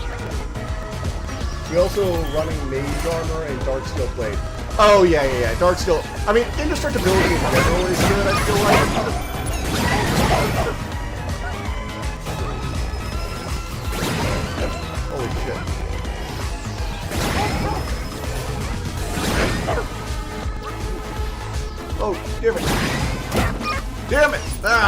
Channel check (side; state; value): both; identical; correlation 1.00